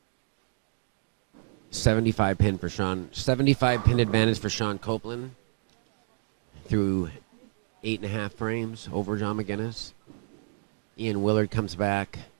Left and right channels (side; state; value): left; silent; digital silence